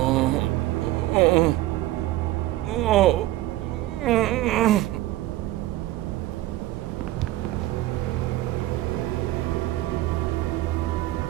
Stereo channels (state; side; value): quieter; left; 16.2 dB